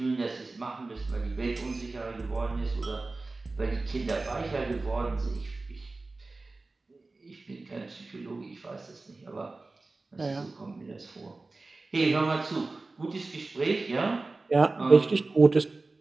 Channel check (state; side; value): quieter; left; 3.4 dB